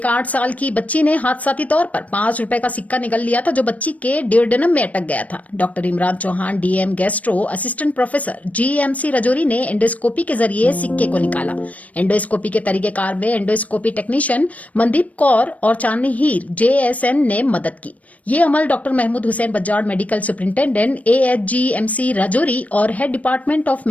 8 साल की बच्ची ने हादसाती तौर पर 5 रुपए का सिक्का निकल लिया था, जो बच्ची के डियोडेनम में अटक गया था। Doctor Imran Chauhan, DM gastro, assistant professor, GMC Rajouri ने एंडोस्कोपी के जरिए सिक्के को निकाला। एंडोस्कोपी के तरीकेकार में एंडोस्कोपी टेक्नीशियन मनदीप कौर और चांदनी हीर जेएसएन ने मदद की। ये अमल doctor Mahmood Hussain Bajad, medical superintendent AHGMC Rajouri और head department of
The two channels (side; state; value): right; late; 0.069 ms